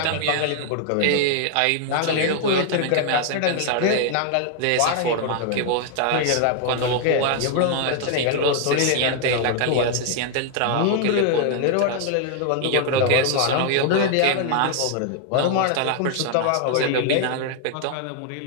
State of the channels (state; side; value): different; both; correlation 0.00